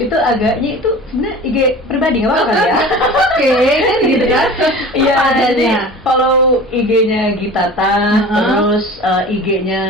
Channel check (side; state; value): both; normal; correlation 0.38